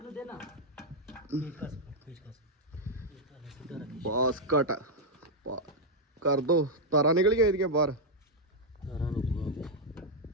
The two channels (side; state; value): both; normal; correlation -0.02